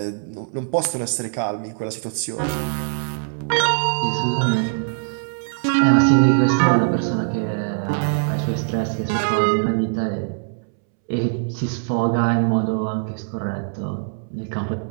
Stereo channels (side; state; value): left; silent; 64 dB below the other